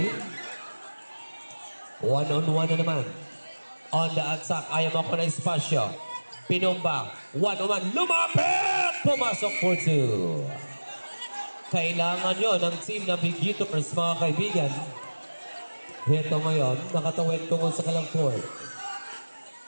One-on-one na naman. On the attack. Ayaw mo ako na espasyo. Pinumba. One-on-one. Lumapit! Pumasok for 2. Kailangan yun ng Team Navigators, mga kaibigan. Ito ngayon, nakatawid tungkol sa kalang court.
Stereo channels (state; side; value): inverted; both; correlation -1.00